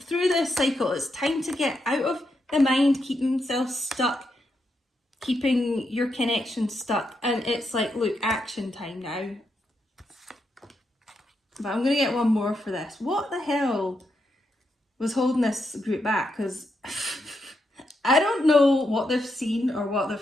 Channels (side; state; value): both; normal; correlation 0.82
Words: through this cycle. It's time to get out of the mind, keeping themselves stuck, keeping your connection stuck. And it's like, look, action time now. But I'm going to get one more for this. What the hell was holding this group back? Because I don't know what they've seen or what